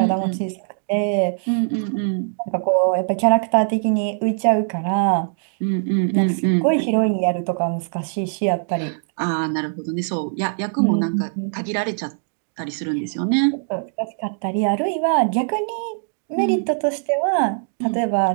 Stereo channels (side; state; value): left; silent; digital silence